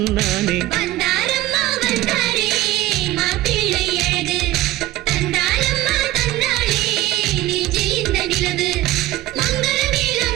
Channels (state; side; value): quieter; left; 16.2 dB